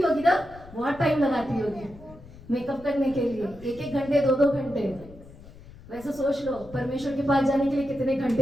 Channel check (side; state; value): left; noise; rumble, 19 dB below the sound